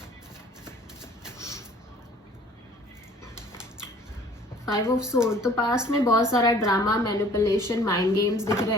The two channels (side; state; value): both; normal; correlation 0.53